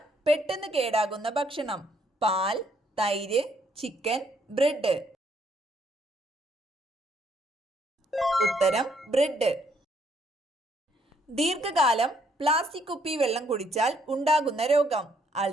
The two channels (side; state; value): both; normal; correlation 0.69